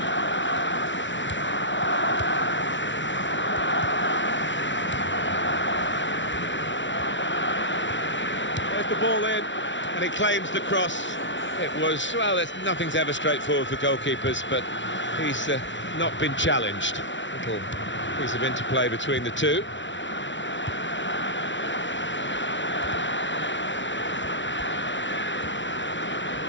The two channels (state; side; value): late; right; 0.55 ms